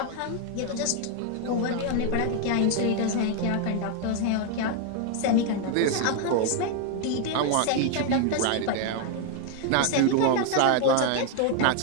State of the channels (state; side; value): different; both; correlation 0.01